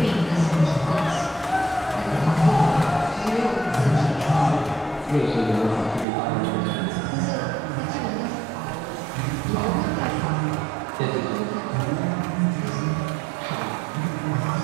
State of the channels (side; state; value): left; drops out; at 6.1 s